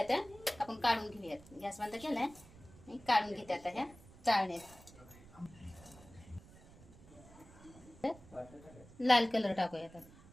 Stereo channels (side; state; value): right; noise; rumble, 21 dB below the sound